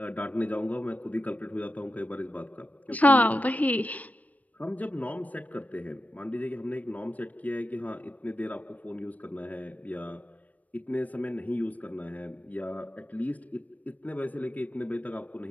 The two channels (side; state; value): right; late; 0.073 ms